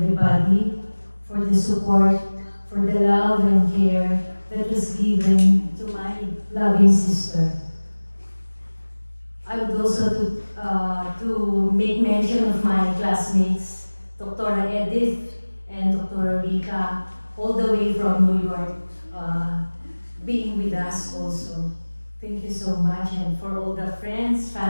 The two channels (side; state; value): both; inverted; correlation -1.00